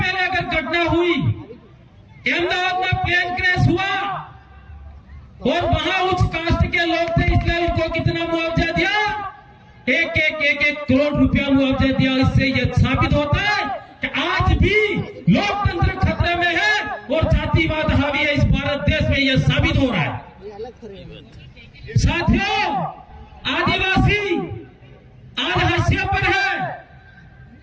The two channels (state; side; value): identical; both; correlation 1.00